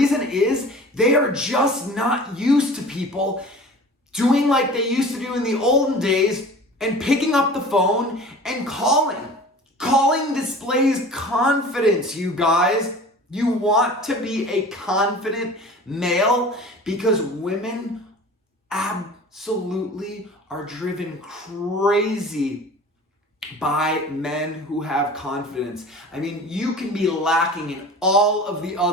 is they are just not used to people doing like they used to do in the olden days and picking up the phone and calling. Calling displays confidence, you guys. You want to be a confident male because women absolutely are driven crazy by men who have confidence. I mean, you can be lacking in all of the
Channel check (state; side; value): normal; both; correlation 0.41